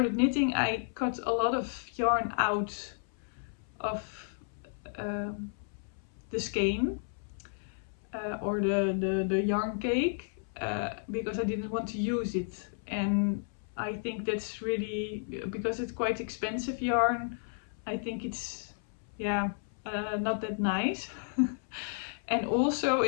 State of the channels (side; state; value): right; silent; 56 dB below the other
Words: knitting, I cut a lot of yarn out of the skein or the yarn cake because I didn't want to use it. And I think that's really, because it's quite expensive yarn, I think it's, yeah, not that nice. And also